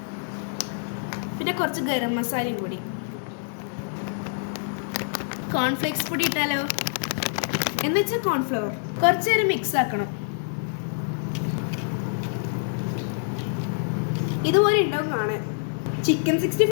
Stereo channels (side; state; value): right; silent; 61 dB below the other